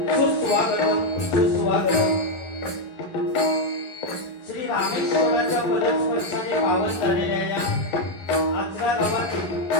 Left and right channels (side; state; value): right; late; 10 ms